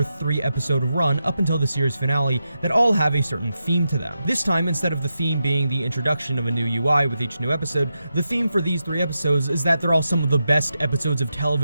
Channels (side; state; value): both; inverted; correlation -0.88